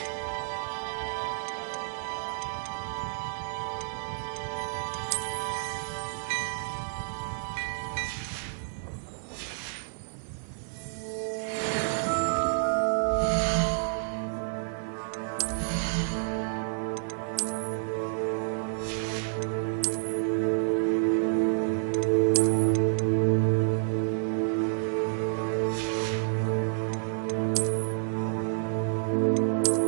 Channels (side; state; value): left; silent; 58 dB below the other